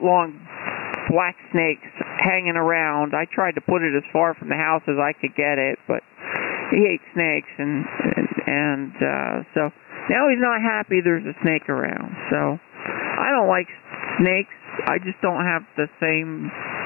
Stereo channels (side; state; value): right; quieter; 24.1 dB